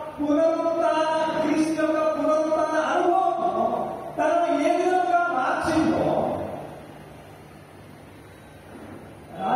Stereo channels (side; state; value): both; identical; correlation 1.00